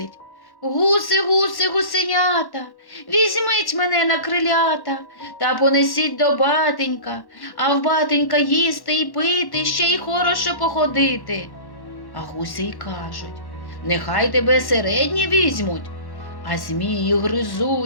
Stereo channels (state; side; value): late; right; 1.1 ms